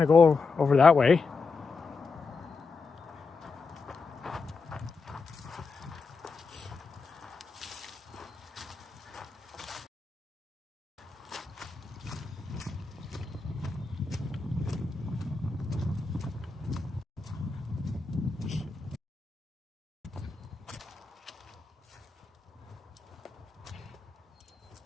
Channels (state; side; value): quieter; right; 4.4 dB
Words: go over that way.